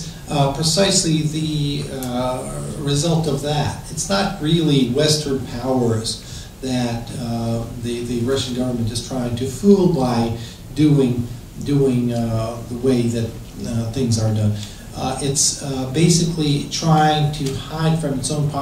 precisely the result of that. It's not really Western powers that the Russian government is trying to fool by doing the way that things are done. It's basically trying to hide from its own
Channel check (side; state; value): both; identical; correlation 1.00